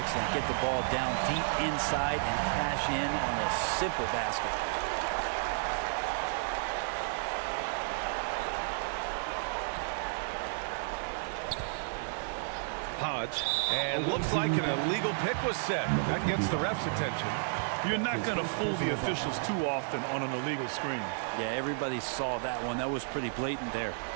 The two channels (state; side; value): silent; left; digital silence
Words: Get the ball down deep inside and cash in on a simple basket. Hodge. And looks like an illegal pick was set. That gets the ref's attention. You're not going to fool the officials too often on an illegal screen. Yeah, everybody saw that one. That was pretty blatant there.